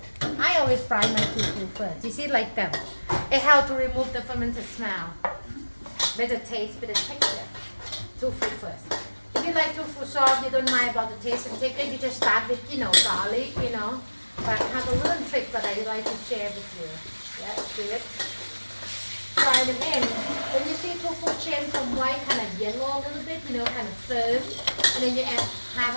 I always fry my tofu first. You see, like them. It helps to remove the fermented smell. Better taste, better texture. Tofu first. If you like tofu soft, you don't mind about the taste and texture, you just start with, garlic, But I have a little trick that I like to share with you. Yeah, do it. Fry them in. When you see tofu change from white, kind of yellow a little bit, kind of firm, and then you add half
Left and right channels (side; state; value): both; inverted; correlation -1.00